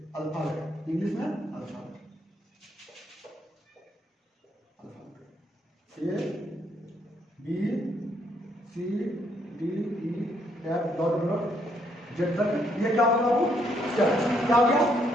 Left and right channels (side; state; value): both; normal; correlation 0.72